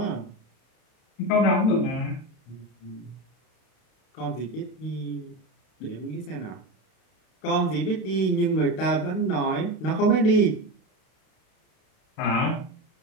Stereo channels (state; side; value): late; right; 32 ms